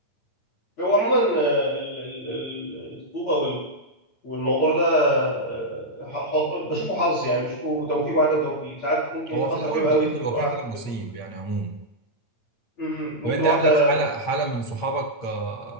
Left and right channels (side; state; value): right; late; 8.8 ms